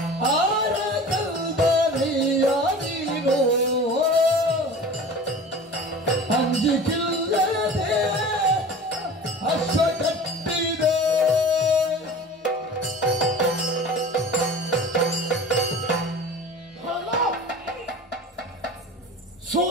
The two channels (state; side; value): normal; both; correlation 0.38